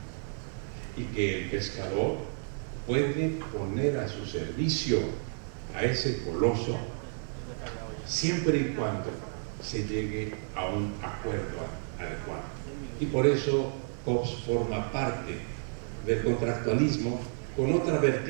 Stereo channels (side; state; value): left; silent; 57 dB below the other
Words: y que el pescador puede poner a su servicio a ese coloso siempre y cuando se llegue a un acuerdo adecuado. Y por eso Hobbes forma parte del contractualismo con otra